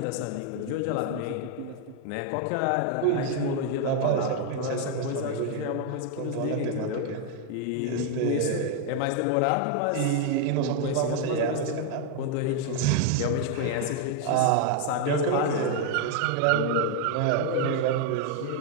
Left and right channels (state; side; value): different; both; correlation 0.00